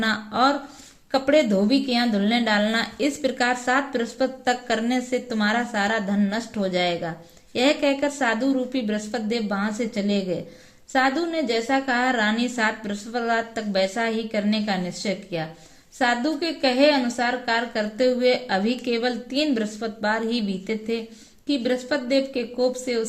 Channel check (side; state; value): both; identical; correlation 1.00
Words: और कपड़े धोबी के यहाँ धुलने डालना। इस प्रकार 7 बृहस्पति तक करने से तुम्हारा सारा धन नष्ट हो जाएगा। यह कहकर साधु रूपी बृहस्पति देव वहां से चले गए। साधु ने जैसा कहा, रानी 7 बृहस्पतिवार तक वैसा ही करने का निश्चय किया। साधु के कहे अनुसार कार्य करते हुए अभी केवल 3 बृहस्पतिवार ही बीते थे कि बृहस्पति देव के कोप से